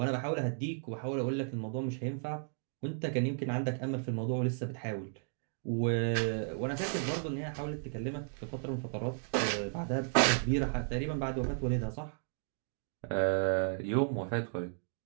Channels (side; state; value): left; silent; digital silence